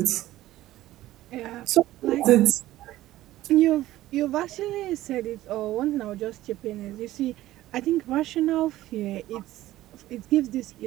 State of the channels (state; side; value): quieter; left; 15.4 dB